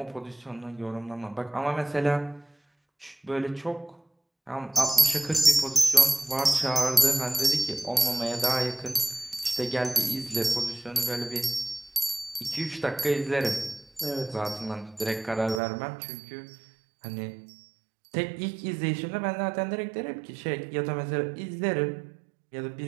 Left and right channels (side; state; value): left; drops out; at 15.6 s